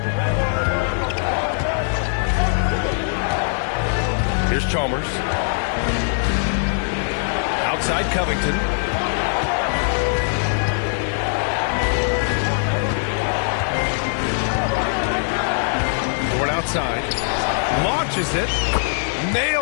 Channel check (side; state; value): right; silent; 56 dB below the other